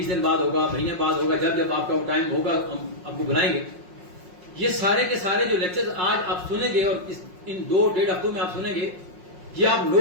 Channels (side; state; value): left; late; 5.5 ms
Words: دن بعد ہوگا, مہینے بعد ہوگا, جب آپ کا وہ ٹائم ہوگا ہم آپ کو بلائیں گے. یہ سارے کے سارے جو لیکچر آج آپ سنیں گے اور ان 2-1.5 ہفتوں میں آپ سنیں گے, یہ آپ